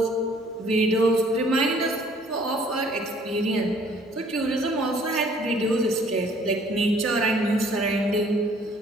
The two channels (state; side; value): normal; both; correlation 0.58